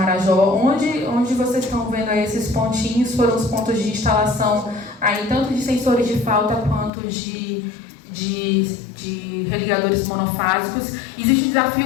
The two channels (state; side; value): drops out; right; at 6.9 s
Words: onde vocês estão vendo aí esses pontinhos, foram os pontos de instalação aí, tanto de sensores de falta quanto de religadores monofásicos. Existe um